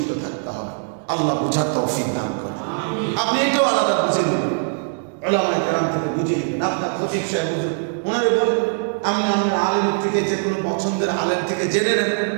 থাকতে হবে। আল্লাহ বুঝার তৌফিক দান করেন। আপনি এটাও আলাদা বুঝে নেবেন, উলামায়ে কেরাম থেকে বুঝে নেবেন। আপনার খতিব সাহেব বুঝুন, ওনারে বলেন, আমি আমার আলেমের থেকে, যে কোনো পছন্দের আলেম থেকে জেনে নেন,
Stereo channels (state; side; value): silent; left; digital silence